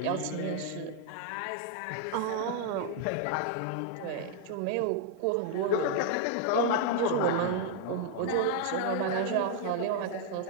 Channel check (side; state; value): both; different; correlation 0.00